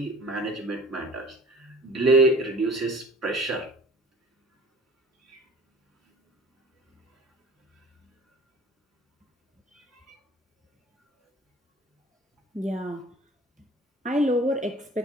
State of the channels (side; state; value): both; normal; correlation 0.45